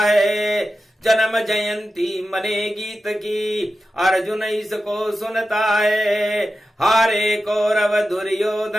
जन्म जयंती मने गीत की, अर्जुन इसको सुनता है। हारे कौरव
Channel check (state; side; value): normal; both; correlation 0.92